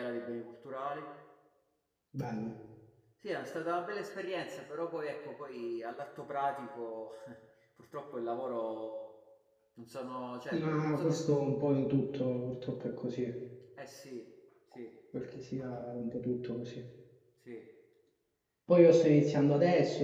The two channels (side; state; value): both; identical; correlation 1.00